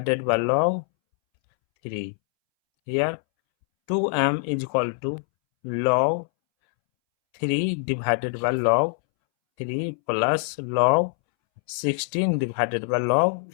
by log 3. Here 2m is equal to log 3 divided by log 3 plus log 16 divided by log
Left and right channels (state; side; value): silent; right; 63 dB below the other